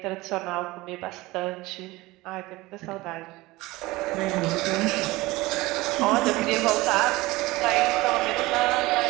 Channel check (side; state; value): left; quieter; 20.3 dB